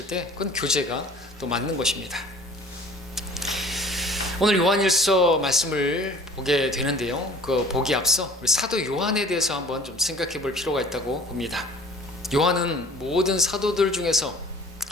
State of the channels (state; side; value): normal; both; correlation 0.48